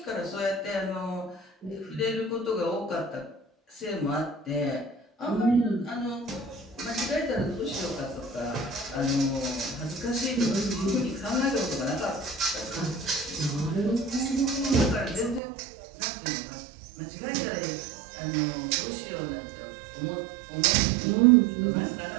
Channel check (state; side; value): drops out; left; at 15.4 s